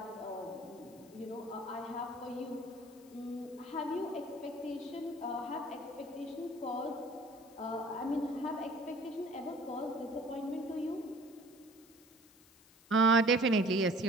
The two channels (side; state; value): left; noise; hiss, 26 dB below the sound